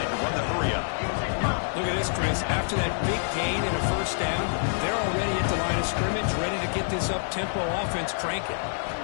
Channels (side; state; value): right; silent; digital silence